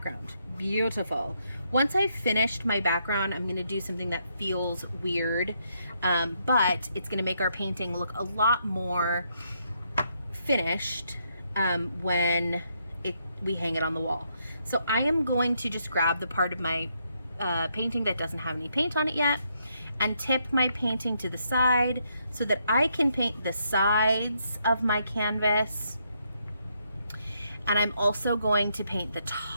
Beautiful. Once I've finished my background, I'm gonna do something that feels weird, but it's gonna make our painting look a lot more finished when we hang it on the wall. So I am going to just grab the part of my painting that doesn't have any paint on it yet and tip my painting to the side so that I can paint the sides of my canvas. And I'm also going to paint the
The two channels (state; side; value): inverted; both; correlation -0.76